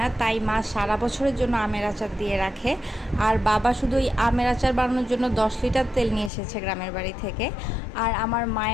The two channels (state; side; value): drops out; right; at 6.3 s